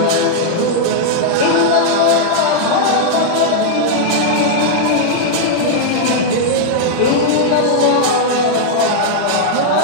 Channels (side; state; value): both; different; correlation -0.01